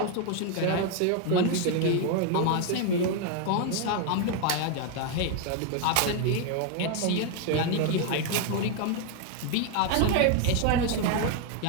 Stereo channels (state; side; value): different; both; correlation 0.01